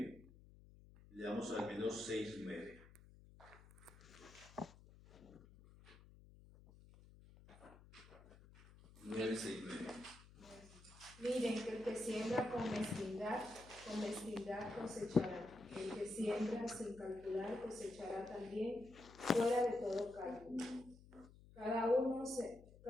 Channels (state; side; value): noise; left; hum, 21 dB below the sound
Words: leamos al menos 6, 9. Miren que el que siembra con mezquindad cosechará. El que siembra sin calcular cosechará también fuera de todo cálculo. Cada